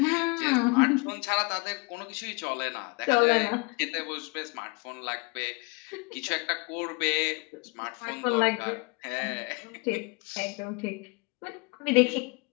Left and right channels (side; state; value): right; quieter; 28.9 dB